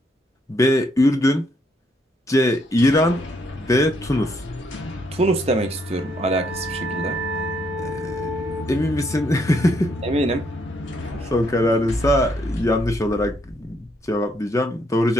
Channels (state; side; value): normal; both; correlation 0.72